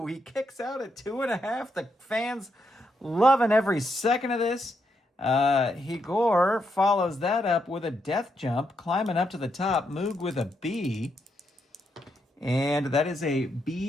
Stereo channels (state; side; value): normal; both; correlation 0.80